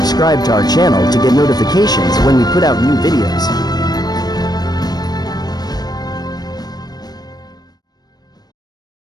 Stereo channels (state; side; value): late; right; 0.19 ms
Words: to our channel to get notifications when we put out new videos.